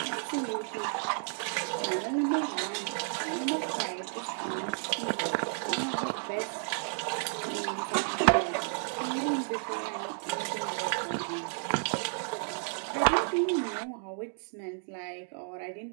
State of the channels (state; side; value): silent; left; digital silence